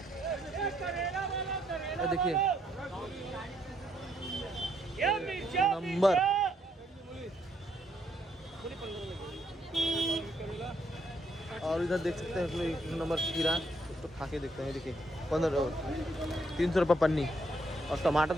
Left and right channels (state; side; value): normal; both; correlation 0.73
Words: देखिए नंबर। और इधर देख सकते हैं 1 नंबर खीरा, तो खा के देखते हैं। देखिए 300 रुपये पन्नी। और टमाटर